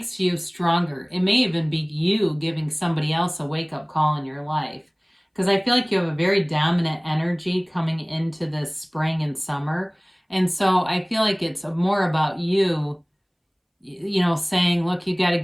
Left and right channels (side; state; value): both; identical; correlation 1.00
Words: you stronger. It may even be you giving somebody else a wake-up call in your life, because I feel like you have a very dominant energy coming into this spring and summer. And so I feel like it's more about you, saying, look, you got to